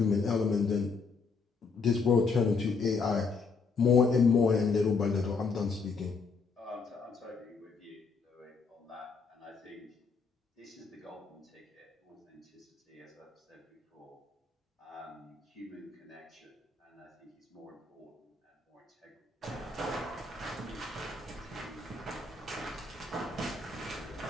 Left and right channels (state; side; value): quieter; right; 4.7 dB